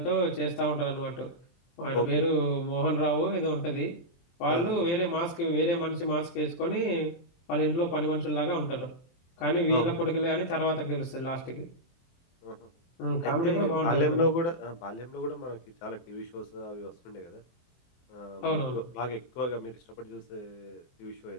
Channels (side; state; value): right; late; 24 ms